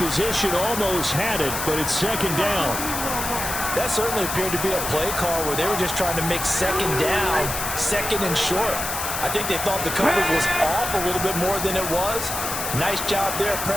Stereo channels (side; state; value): left; noise; hiss, 4 dB below the sound